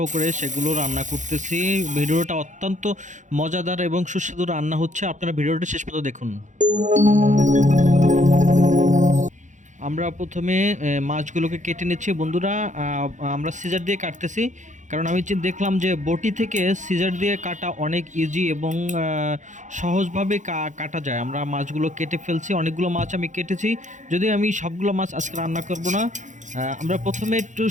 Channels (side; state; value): left; late; 0.36 ms